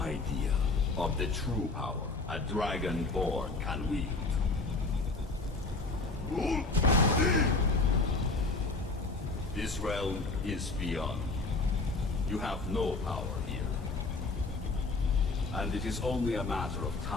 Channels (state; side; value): quieter; right; 3.6 dB